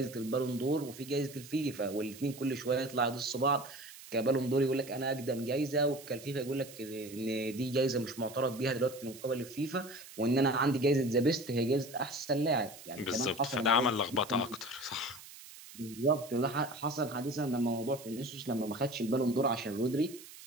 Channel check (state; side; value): noise; right; hiss, 17 dB below the sound